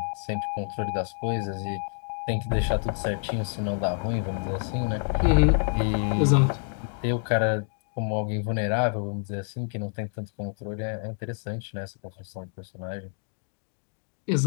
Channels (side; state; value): right; silent; 60 dB below the other